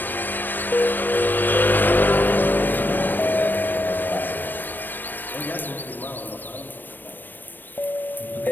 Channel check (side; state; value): right; late; 0.092 ms